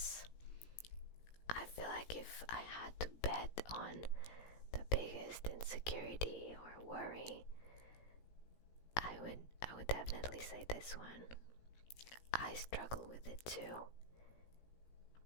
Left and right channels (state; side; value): late; right; 17 ms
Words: I feel like if I had to bet on the biggest insecurity or worry, I would definitely say this one. I struggle with it too,